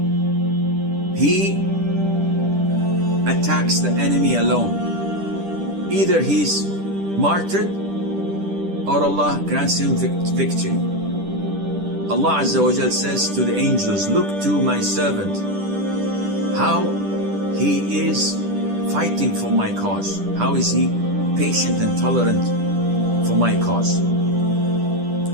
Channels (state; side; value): late; left; 10 ms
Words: he attacks the enemy alone. Either he's martyred or Allah grants him victory. Allah Azza wa Jal says to the angels, look to my servant, how he is fighting for my cause. How is he patient and tolerant for my cause?